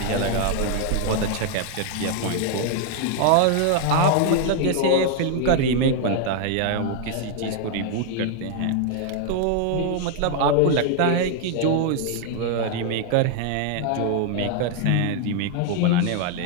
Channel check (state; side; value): different; both; correlation 0.00